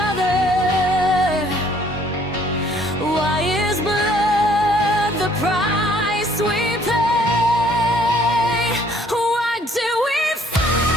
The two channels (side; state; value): both; normal; correlation 0.61